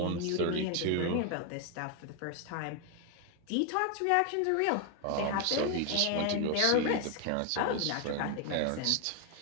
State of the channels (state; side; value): different; both; correlation 0.01